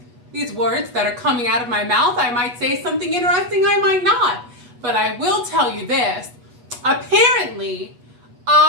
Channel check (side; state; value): left; late; 8.2 ms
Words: these words that are coming out of my mouth. I might say something interesting, I might not. But I will tell you this. Apparently,